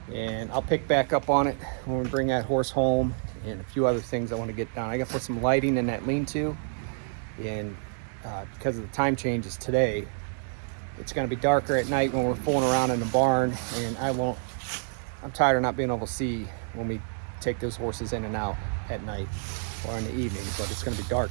And I'll pick back up on it when we bring that horse home and a few other things I want to get done. I got to put some lighting in that lean-to. And because of the time changes today, it's going to be darker at night when we're fooling around in the barn. And I'm tired of not being able to see when we take those horses in and out at night or in the evening. But it's going to be dark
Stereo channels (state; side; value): silent; left; digital silence